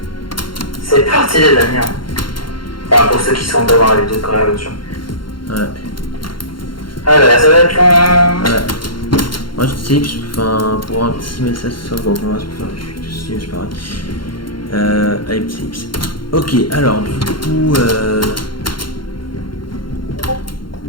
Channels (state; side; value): late; right; 0.72 ms